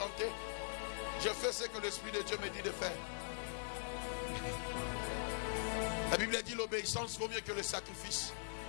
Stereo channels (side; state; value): right; silent; digital silence